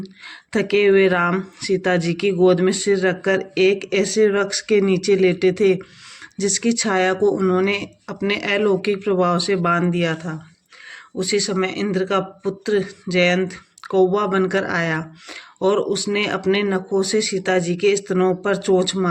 थके हुए राम सीता जी की गोद में सिर रखकर एक ऐसे वृक्ष के नीचे लेटे थे जिसकी छाया को उन्होंने अपने अलौकिक प्रभाव से बांध दिया था। उसी समय इंद्र का पुत्र जयंत कौवा बनकर आया और उसने अपने नखों से सीता जी के स्तनों पर चोंच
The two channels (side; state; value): both; identical; correlation 1.00